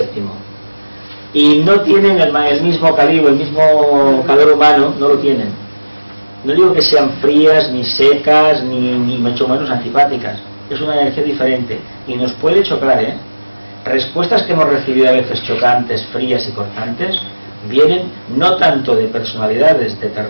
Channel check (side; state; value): both; inverted; correlation -1.00